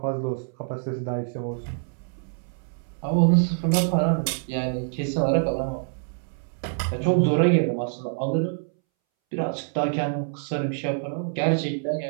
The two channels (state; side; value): silent; left; 61 dB below the other